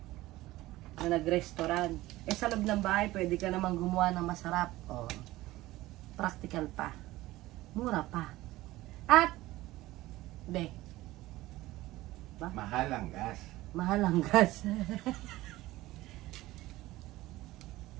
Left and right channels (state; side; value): quieter; left; 17.6 dB